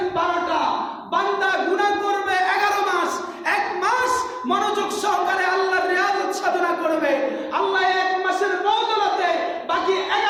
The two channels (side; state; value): both; identical; correlation 1.00